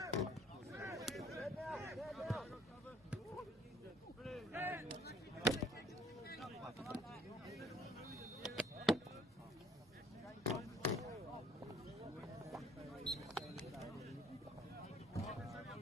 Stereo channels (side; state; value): both; normal; correlation 0.58